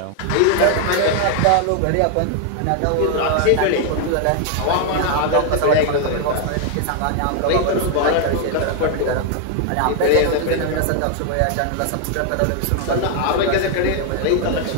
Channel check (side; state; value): both; different; correlation 0.00